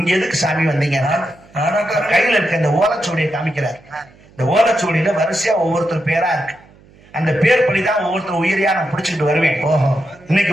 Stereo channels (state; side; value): noise; right; hum, 27 dB below the sound